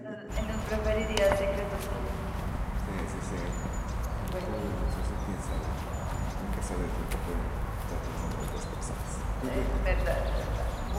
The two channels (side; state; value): both; identical; correlation 1.00